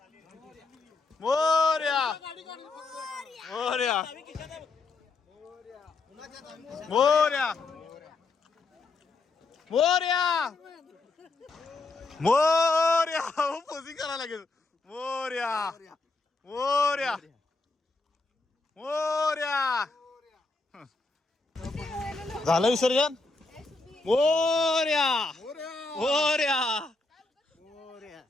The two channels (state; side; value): quieter; right; 3.6 dB